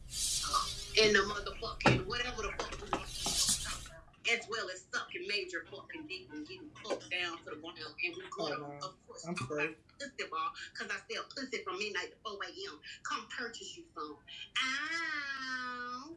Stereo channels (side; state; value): both; identical; correlation 1.00